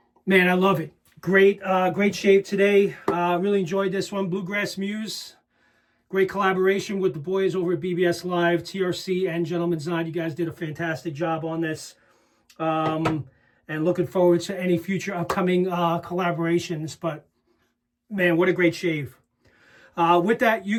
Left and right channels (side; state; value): both; identical; correlation 1.00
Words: Man, I love it. Great, great shave today. Really enjoyed this one. Blue Grass Muse. Great collaboration with the boys over at BBS.Live, TRC, and Gentleman's Night. You guys did a fantastic job on this. And looking forward to any future upcoming collaborations. But Man, what a great shave. With that, you